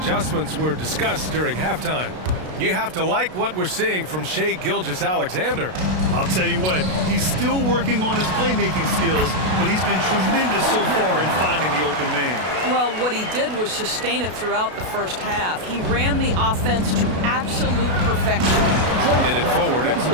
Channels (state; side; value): late; left; 32 ms